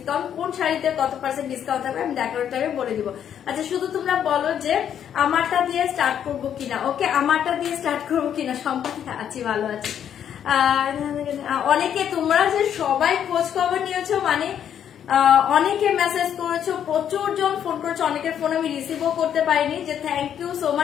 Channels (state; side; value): quieter; right; 9.2 dB